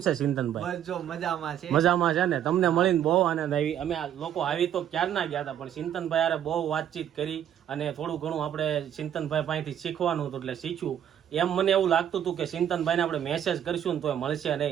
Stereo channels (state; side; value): quieter; left; 10.2 dB